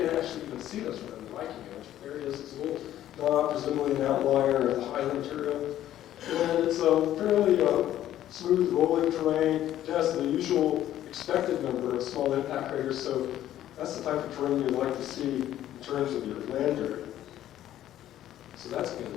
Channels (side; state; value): right; quieter; 12.4 dB